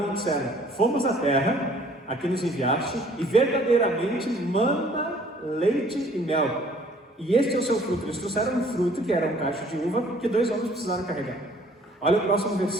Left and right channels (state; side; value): normal; both; correlation 0.57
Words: e disseram: fomos à terra a que nos enviaste, e verdadeiramente mana, leite e mel, e este é o seu fruto. Eles trouxeram um fruto que era um cacho de uva, que 2 homens precisaram carregar. Olha o próximo